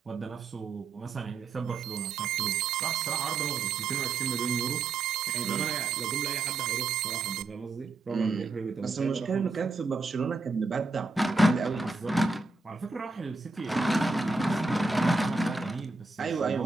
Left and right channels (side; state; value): left; quieter; 3.6 dB